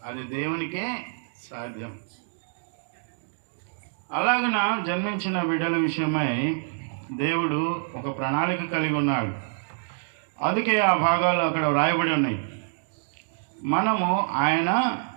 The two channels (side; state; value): left; silent; digital silence